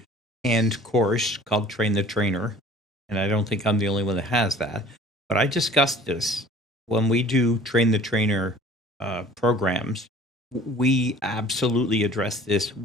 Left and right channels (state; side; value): normal; both; correlation 0.49